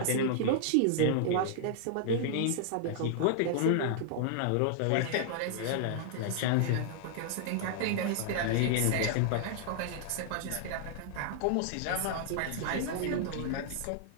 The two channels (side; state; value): both; different; correlation -0.01